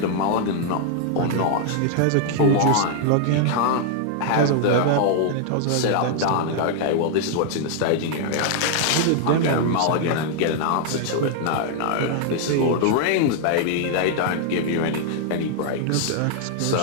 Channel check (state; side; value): different; both; correlation -0.01